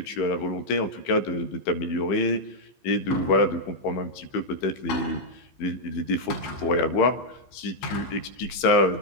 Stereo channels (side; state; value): right; late; 15 ms